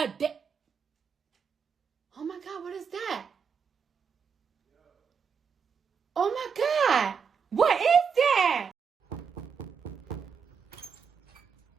Oh my God, what is that? Oh my God, what is that?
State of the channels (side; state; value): left; quieter; 6.4 dB